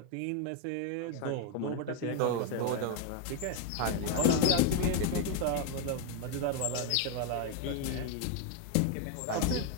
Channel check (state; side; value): different; both; correlation 0.01